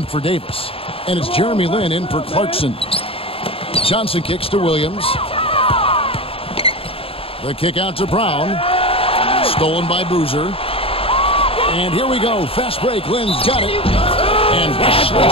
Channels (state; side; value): late; right; 0.27 ms